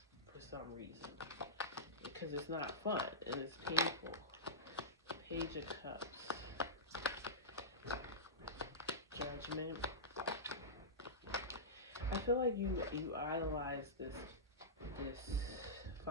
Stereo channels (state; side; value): normal; both; correlation -0.16